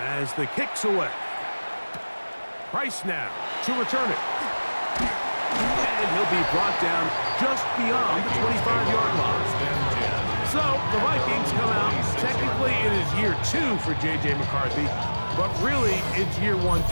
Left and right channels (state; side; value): inverted; both; correlation -1.00